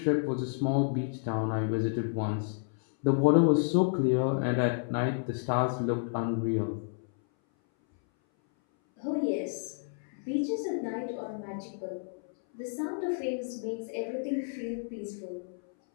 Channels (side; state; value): right; silent; 57 dB below the other